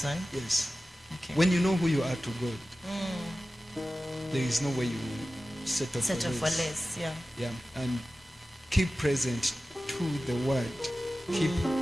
Yes. Okay. When you know who you are to God, there is no way you will settle Settle for less, yeah. Yeah, and keep present to the word. Keep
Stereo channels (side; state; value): both; normal; correlation 0.95